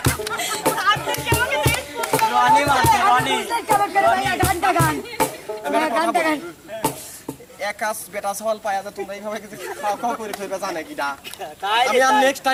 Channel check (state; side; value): identical; both; correlation 1.00